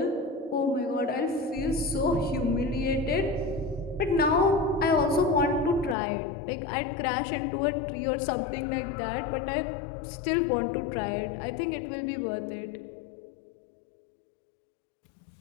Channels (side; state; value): right; drops out; at 6.0 s